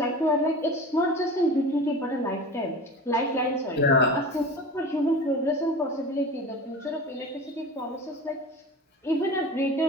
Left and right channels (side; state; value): both; normal; correlation 0.34